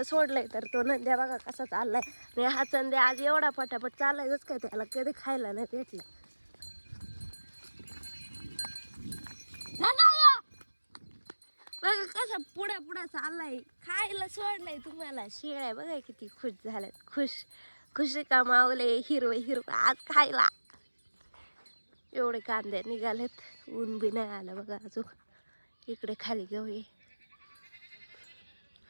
सोडलंय तर तो नंद्या बघा कसा चाललाय. आणि हा चंद्या आज एवढा पटापट चाललायच काय, त्याला कधी खायला नाही भेटलं. बघा कसा पुढे पुढे चाललाय, खायला सोडलंय तुम्हाला. शेळ्या बघा किती खुश झाल्यात, खुशी कमावले. हिरवं हिरवं आज खायला. एवढे कांदे निघालेत, ऊन बी नाही आलं बघा अजून. इकडे खाली घेऊया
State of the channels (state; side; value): inverted; both; correlation -1.00